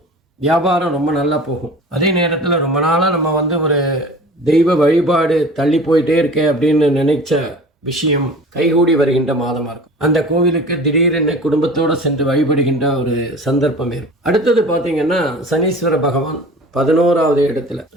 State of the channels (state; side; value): normal; both; correlation 0.41